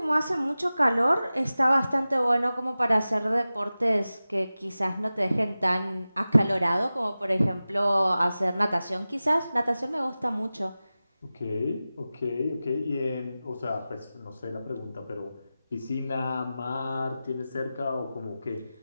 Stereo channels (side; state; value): both; inverted; correlation -0.96